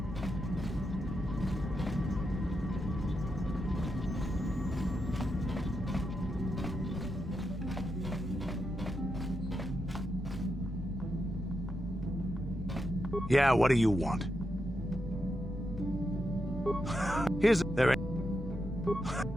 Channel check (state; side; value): normal; both; correlation 0.85